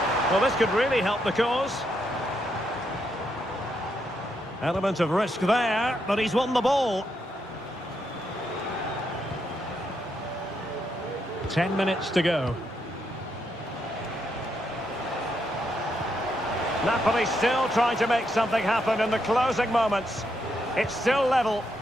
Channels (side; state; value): both; normal; correlation 0.79